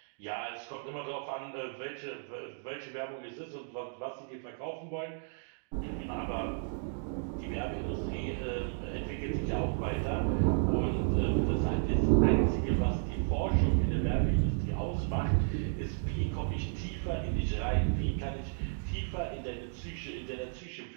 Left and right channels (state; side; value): silent; left; digital silence